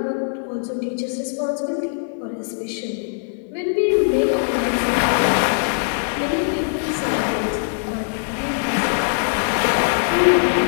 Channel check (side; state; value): right; silent; 63 dB below the other